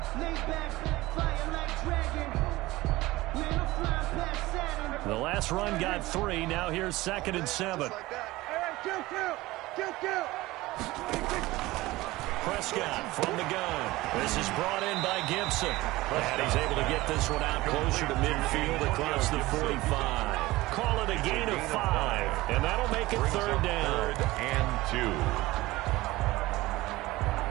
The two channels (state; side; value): quieter; left; 19.0 dB